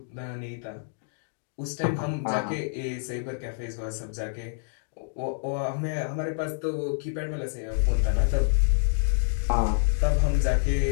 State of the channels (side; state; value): right; silent; digital silence